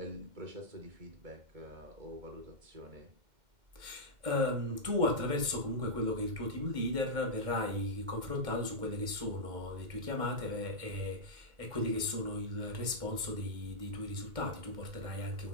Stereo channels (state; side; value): late; left; 2.1 ms